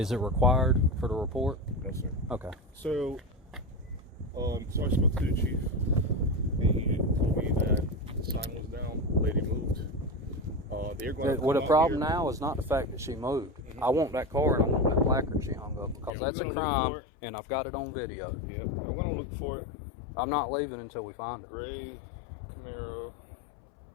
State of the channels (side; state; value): right; drops out; at 16.1 s